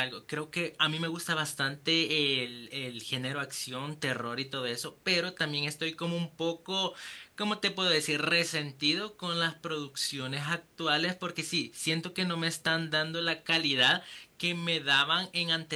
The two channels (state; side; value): identical; both; correlation 1.00